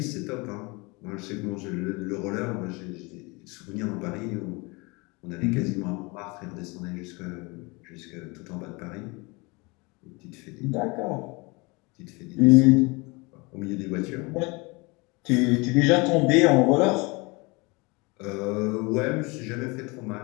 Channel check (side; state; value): right; quieter; 26.8 dB